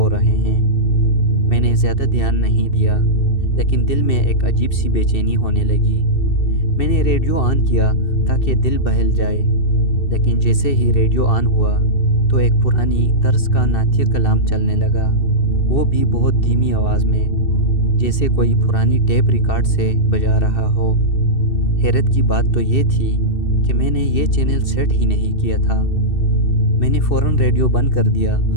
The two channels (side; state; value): right; late; 2.7 ms